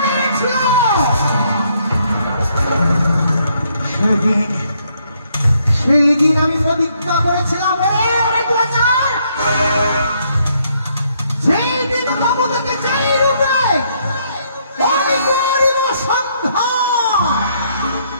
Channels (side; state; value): both; inverted; correlation -0.71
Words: সেই দিন আমি প্রতিজ্ঞা করেছিলাম সেই দিন বাবু থেকে চাই রূপে